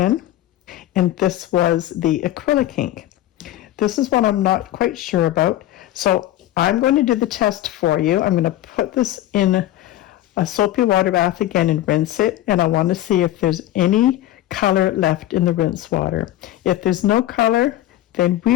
And this was the acrylic ink. This is what I'm not quite sure about. So I'm going to do the test for you. I'm going to put this in a soapy water bath again and rinse it. And I want to see if there's any color left in the rinse water. If there's no color, then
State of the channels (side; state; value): right; quieter; 13.7 dB